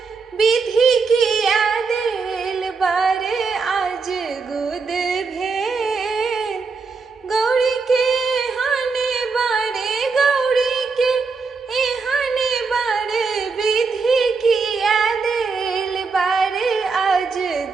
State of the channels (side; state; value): left; quieter; 4.7 dB